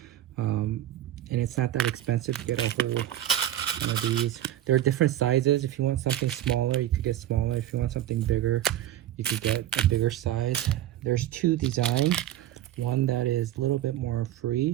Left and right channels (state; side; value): quieter; left; 12.6 dB